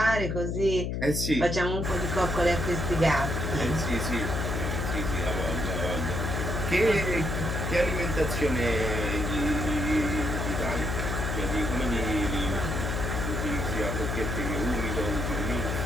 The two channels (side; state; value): left; noise; hum, 1 dB below the sound